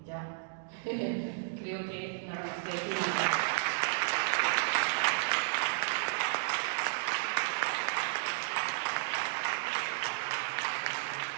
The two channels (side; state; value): left; silent; digital silence